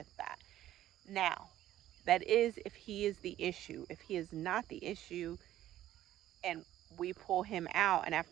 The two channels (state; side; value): quieter; left; 13.1 dB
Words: that. Now, that is if he is the issue. If he is not the issue and we pull him out and